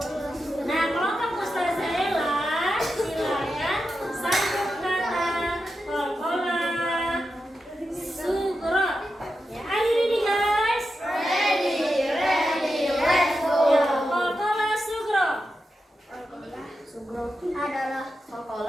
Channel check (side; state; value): both; normal; correlation 0.89